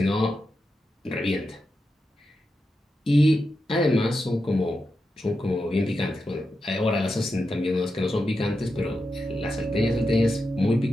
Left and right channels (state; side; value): normal; both; correlation 0.88